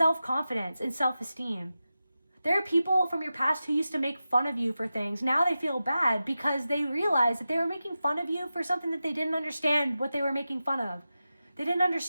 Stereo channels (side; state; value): both; inverted; correlation -0.93